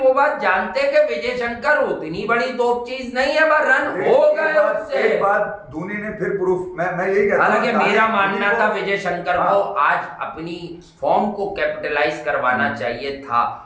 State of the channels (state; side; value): identical; both; correlation 1.00